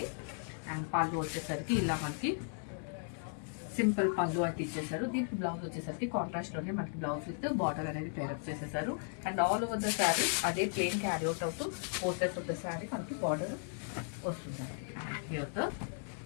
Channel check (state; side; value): silent; right; 54 dB below the other